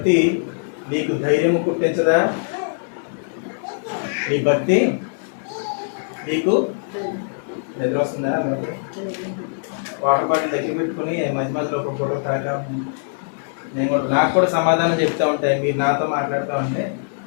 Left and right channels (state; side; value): silent; right; digital silence